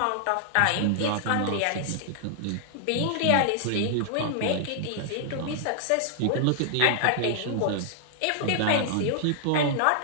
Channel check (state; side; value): different; both; correlation 0.00